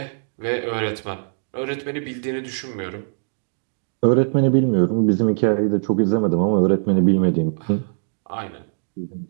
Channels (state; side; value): silent; left; digital silence